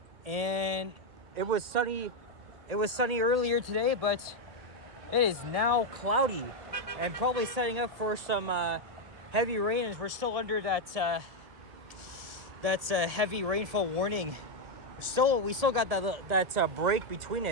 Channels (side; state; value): left; late; 1.8 ms